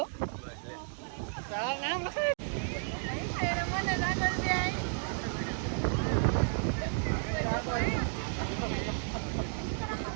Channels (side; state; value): left; silent; 56 dB below the other